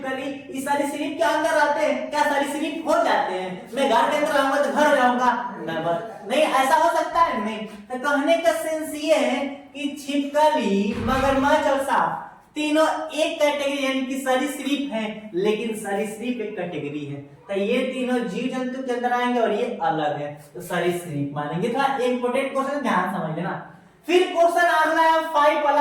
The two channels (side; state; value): both; identical; correlation 1.00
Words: ये सारी सरीसृप के अंदर रहते हैं, क्या सारी सरीसृप हो जाते हैं? मैं घर के अंदर रहूंगा तो घर हो जाऊंगा? नहीं, ऐसा हो सकता है नहीं। तो कहने का सेंस ये है कि छिपकली, मगरमच्छ और सांप तीनों एक कैटेगरी यानी कि सरीसृप है, लेकिन सरीसृप एक कैटेगरी है, तो ये तीनों जीव जंतु के अंदर आएंगे और ये अलग है, तो सरीसृप मानेंगे। थोड़ा इंपॉर्टेंट क्वेश्चन ध्यान समझ लेना। फिर क्वेश्चन अगला है 5